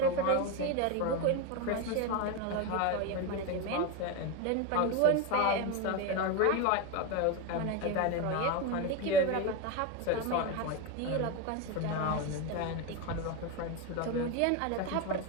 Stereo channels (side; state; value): both; different; correlation 0.03